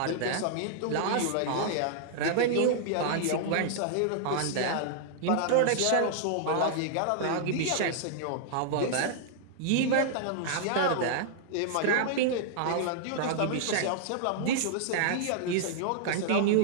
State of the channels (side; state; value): both; different; correlation -0.01